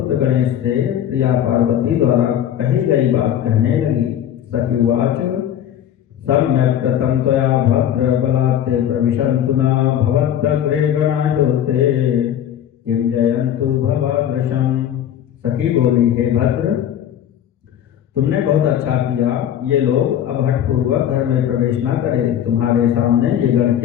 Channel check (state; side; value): quieter; right; 10.4 dB